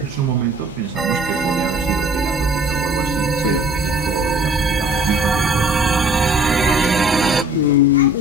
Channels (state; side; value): normal; both; correlation 0.52